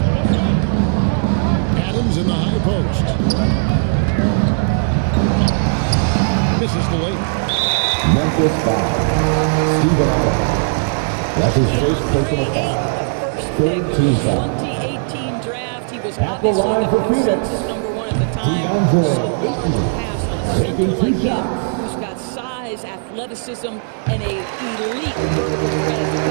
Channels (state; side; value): silent; left; 56 dB below the other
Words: Adams in the high post. Misses the layup. Memphis foul. Stephen Adams. That's his first personal foul. Ayton, the first pick of the 2018 draft. He was obviously the consensus number 1 at the time. So hard to pass on a center like him, who's got size, athleticism, and a elite vertical threat at the